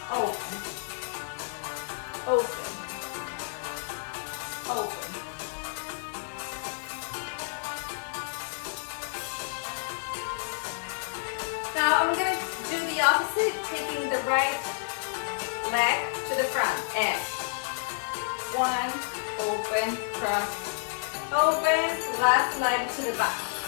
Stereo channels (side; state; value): right; silent; 58 dB below the other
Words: open, open, open. Now I'm gonna do the opposite, taking the right leg to the front and 1, open, cross, open, left leg to the back.